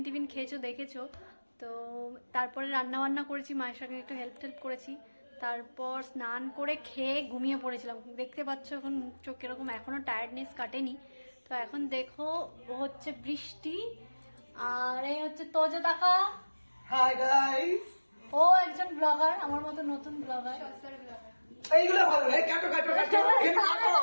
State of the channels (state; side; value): inverted; both; correlation -1.00